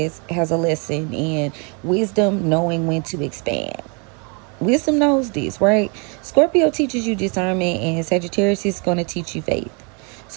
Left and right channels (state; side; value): quieter; left; 34.2 dB